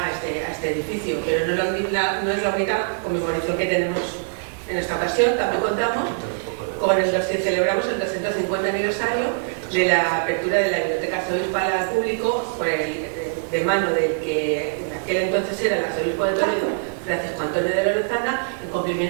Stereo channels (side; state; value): left; silent; digital silence